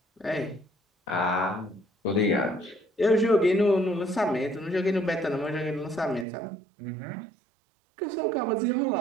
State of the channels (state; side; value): drops out; left; at 6.2 s